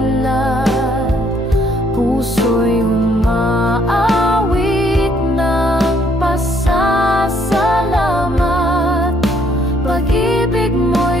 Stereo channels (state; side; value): normal; both; correlation 0.67